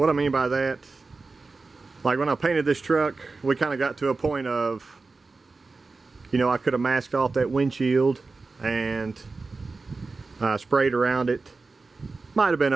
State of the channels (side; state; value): left; quieter; 3.9 dB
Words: I mean by that, like when I painted this truck, we kind of got to a point of, you know, I could have masked off that windshield and sprayed around it. Might have been